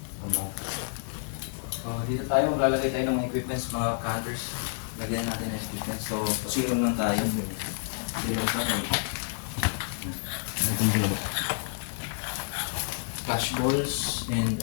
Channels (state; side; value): silent; right; digital silence